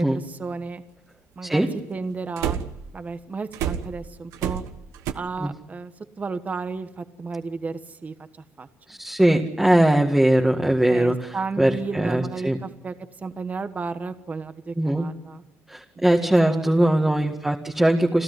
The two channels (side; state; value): both; normal; correlation 0.95